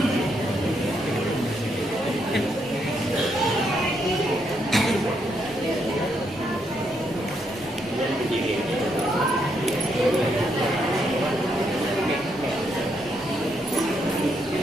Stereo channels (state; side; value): normal; both; correlation 0.77